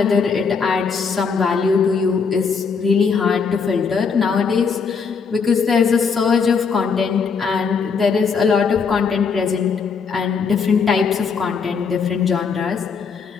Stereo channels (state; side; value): quieter; right; 5.6 dB